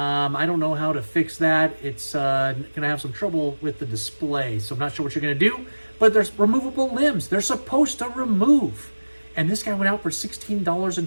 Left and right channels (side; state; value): both; inverted; correlation -1.00